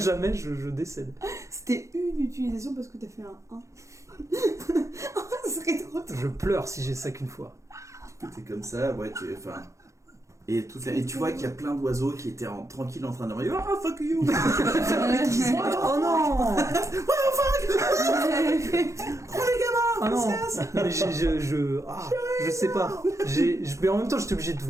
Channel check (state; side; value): late; left; 0.15 ms